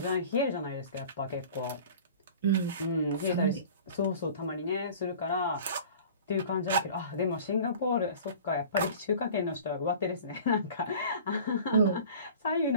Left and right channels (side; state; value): both; inverted; correlation -0.42